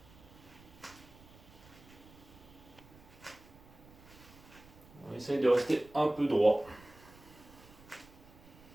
On essaye de rester un peu droit.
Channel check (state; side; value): noise; right; rumble, 22 dB below the sound